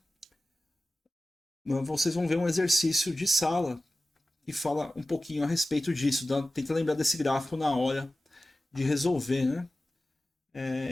Vocês vão ver um exercício de sala que fala um pouquinho a respeito disso. Tenta lembrar desse gráfico na hora de resolver. Né?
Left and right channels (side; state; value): both; normal; correlation 0.96